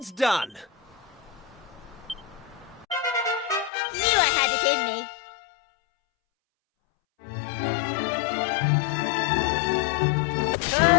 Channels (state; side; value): drops out; right; at 3.7 s